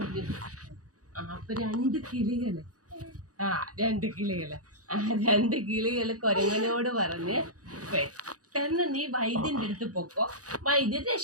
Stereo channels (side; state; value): left; late; 0.67 ms